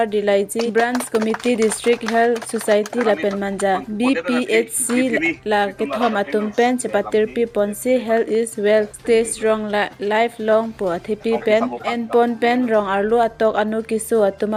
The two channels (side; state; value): both; identical; correlation 1.00